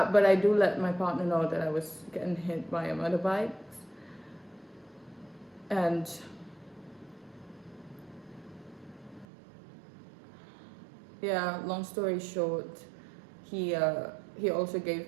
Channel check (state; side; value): drops out; left; at 9.2 s